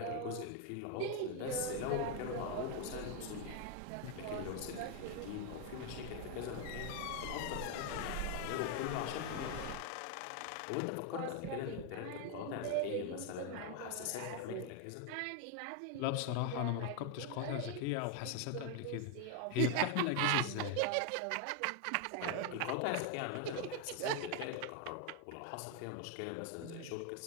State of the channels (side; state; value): both; different; correlation 0.01